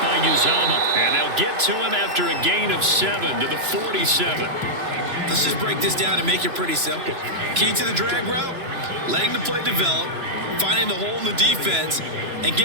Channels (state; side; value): late; left; 3.0 ms